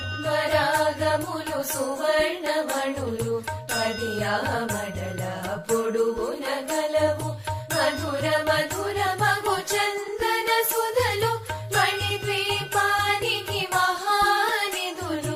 పద్మరాగములు సువర్ణమణులు పడియామడల పొడుగున గలవు మధుర మధుర మగు చందన సుధలు మణిద్వీపానికి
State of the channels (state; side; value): identical; both; correlation 1.00